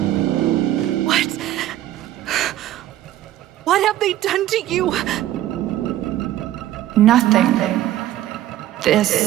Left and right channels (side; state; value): left; quieter; 13.6 dB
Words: What? What have they done to you? Nothing.